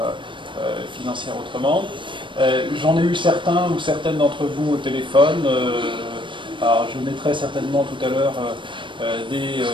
Financière Autrement. J'en ai eu certains ou certaines d'entre vous au téléphone. Alors, je mettrai certainement tout à l'heure des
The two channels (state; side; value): late; left; 0.24 ms